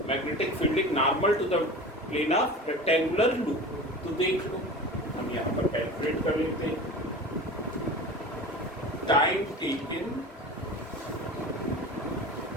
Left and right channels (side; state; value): both; normal; correlation 0.34